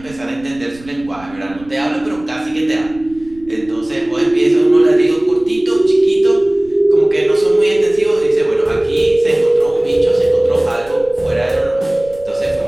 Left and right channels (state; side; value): noise; right; rumble, 22 dB below the sound